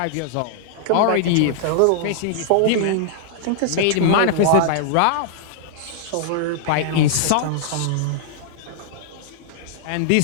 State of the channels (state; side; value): different; both; correlation -0.01